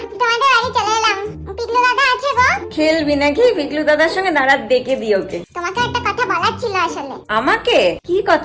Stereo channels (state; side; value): identical; both; correlation 1.00